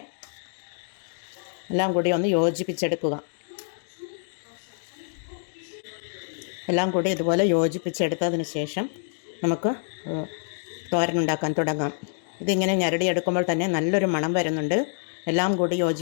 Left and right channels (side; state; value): right; silent; digital silence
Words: എല്ലാം കൂടി ഒന്ന് യോജിപ്പിച്ചെടുക്കുക. എല്ലാം കൂടി ഇതുപോലെ യോജിപ്പിച്ചെടുത്തതിന് ശേഷം നമുക്ക് തോരനുണ്ടാക്കാൻ തുടങ്ങാം. ഇതിങ്ങനെ ഞരടിയെടുക്കുമ്പോൾ തന്നെ നല്ലൊരു മണം വരുന്നുണ്ട്. എല്ലാം കൂടി